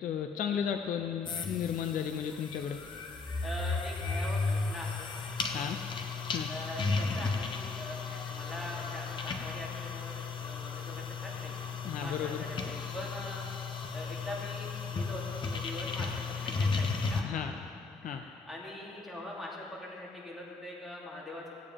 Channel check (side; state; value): right; quieter; 4.4 dB